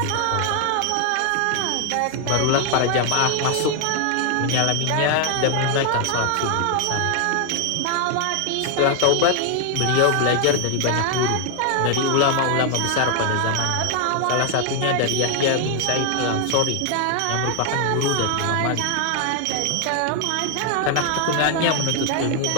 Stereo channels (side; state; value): both; different; correlation 0.00